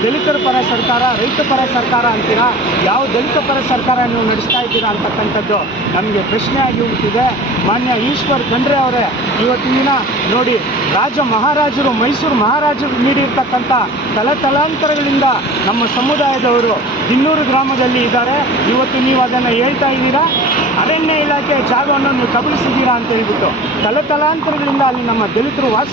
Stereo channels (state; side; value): normal; both; correlation 0.40